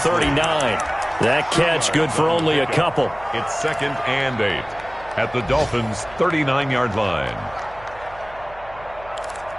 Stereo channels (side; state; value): right; noise; hum, 21 dB below the sound